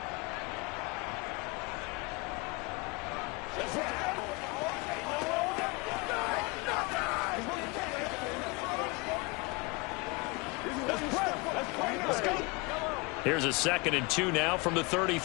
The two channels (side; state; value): right; quieter; 27.5 dB